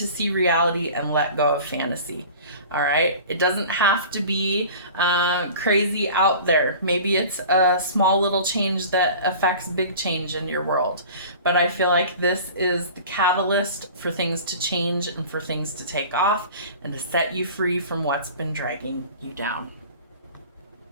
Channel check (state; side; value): inverted; both; correlation -0.40